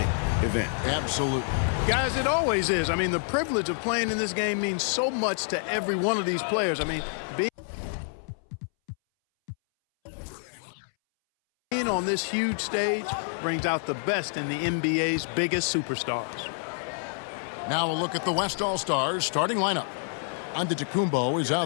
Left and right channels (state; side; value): silent; right; 60 dB below the other